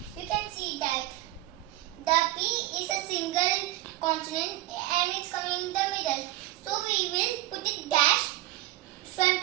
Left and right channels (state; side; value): quieter; left; 16.7 dB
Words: you can see that the P is a single consonant and it's coming in the middle. So we will put it dash front